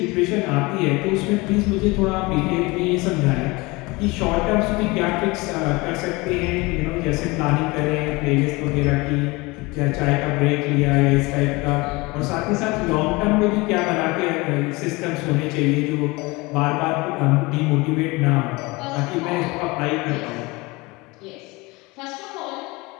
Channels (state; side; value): quieter; right; 23.9 dB